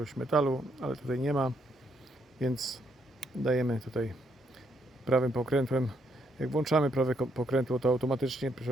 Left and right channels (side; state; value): both; normal; correlation 0.74